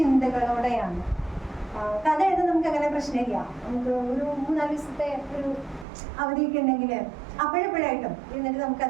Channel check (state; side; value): drops out; left; at 5.9 s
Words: കഥ എഴുതാൻ നമുക്ക് അങ്ങനെ പ്രശ്നമില്ല. നമുക്ക് ഒരു 3-4 ദിവസത്തെ ഒരു അവധിയൊക്കെ ഉണ്ടെങ്കിൽ അപ്പോഴെപ്പോഴായിട്ടും എന്നിട്ട്